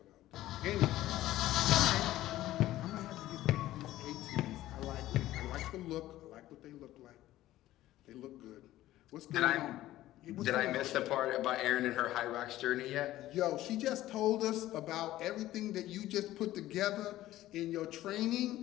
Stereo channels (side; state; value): right; quieter; 15.0 dB